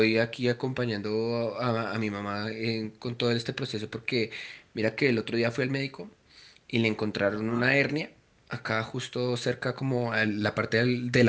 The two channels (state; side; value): identical; both; correlation 1.00